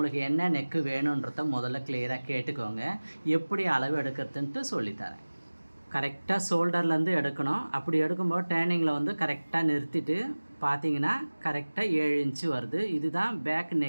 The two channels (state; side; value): inverted; both; correlation -1.00